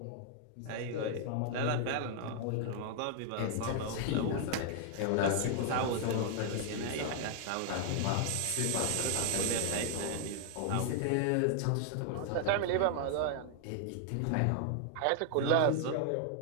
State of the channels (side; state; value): both; different; correlation 0.00